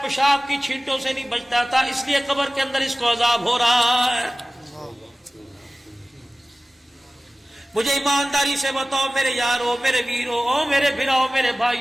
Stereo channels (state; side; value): normal; both; correlation 0.97